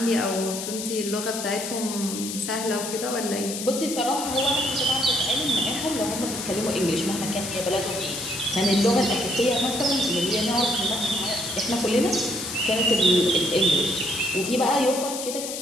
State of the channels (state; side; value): noise; left; hiss, 6 dB below the sound